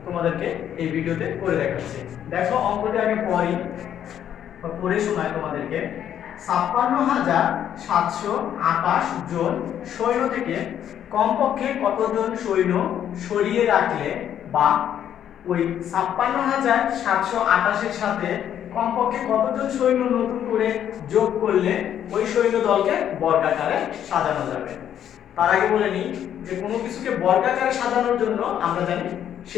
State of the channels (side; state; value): right; quieter; 10.0 dB